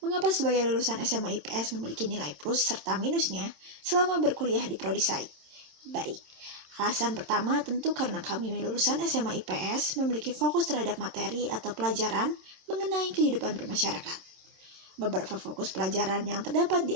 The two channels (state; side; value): late; left; 26 ms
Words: mengapa sebagai lulusan SMA IPS memiliki nilai plus serta minusnya selama berkuliah di Prodi Saik. Baik, alasan pertama tentu karena kami lulusan SMA IPS memiliki fokus terhadap materi atau pelajaran mengenai kehidupan bermasyarakat. Beberapa fokus pelajaran yang terdapat di